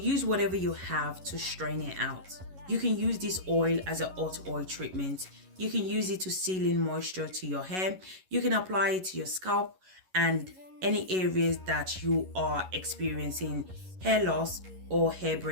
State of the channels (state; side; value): late; left; 11 ms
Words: whatever you have to strain it out. You can use this oil as a hot oil treatment. You can use it to seal in moisture to your hair. You can apply it to your scalp and any areas that you are experiencing hair loss or hair